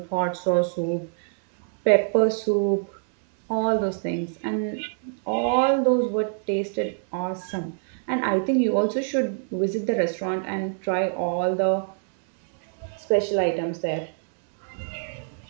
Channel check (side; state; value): left; silent; digital silence